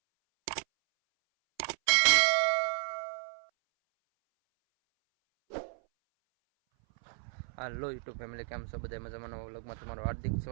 YouTube family, કેમ છો બધા? મજામાં? નવા વ્લોગમાં તમારું હાર્દિક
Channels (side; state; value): left; silent; 56 dB below the other